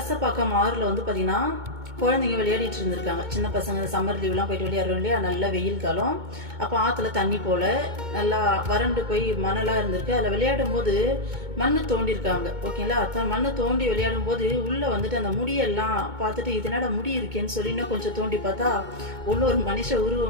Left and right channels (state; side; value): late; left; 2.2 ms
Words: ஆறுல வந்து பாத்தீங்கன்னா குழந்தைங்க விளையாடிட்டு இருந்திருக்காங்க. சின்ன பசங்க சம்மர் லீவ்லாம் போயிட்டு விளையாடுறோம் இல்லையா, நல்ல வெயில் காலம். அப்போ ஆற்றுல தண்ணி போல நல்லா வறண்டு போய் மணலாக இருந்திருக்கு. அதில் விளையாடும் போது மண்ணு தோண்டிருக்காங்க, ஓகேங்களா. மண்ணு தோண்டி விளையாடும் போது உள்ளே வந்துட்டு அந்த முடியெல்லாம் பார்த்துட்டு இதனோட முடி இருக்கேன்னு சொல்லி இன்னும் கொஞ்சம் தோண்டி பார்த்தா உள்ள ஒரு மனுஷ